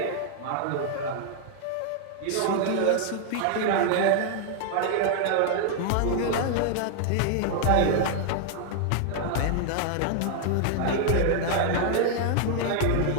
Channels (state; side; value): different; both; correlation 0.00